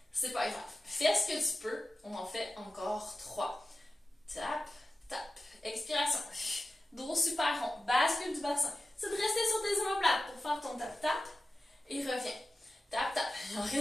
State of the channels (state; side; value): normal; both; correlation 0.94